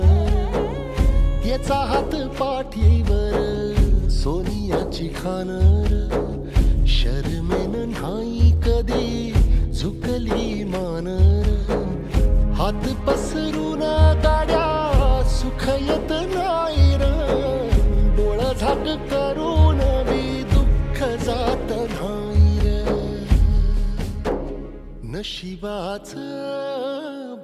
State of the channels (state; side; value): identical; both; correlation 1.00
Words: याचा हात पाठीवर सोनियाची खानर, शर्मेन नाही कधी झुकली मानर. हात पसरून गाड्या सुख येत नाही र, डोळा झाक करून बी दुःख जात नाही र. नशिबाच